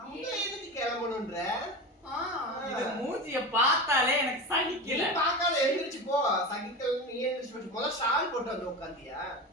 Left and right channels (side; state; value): both; normal; correlation 0.25